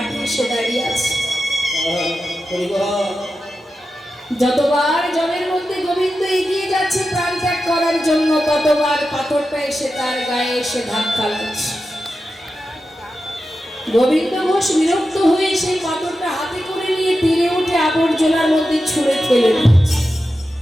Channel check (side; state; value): both; normal; correlation 0.91